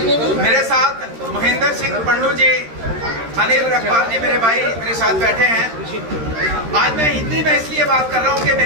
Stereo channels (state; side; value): late; left; 13 ms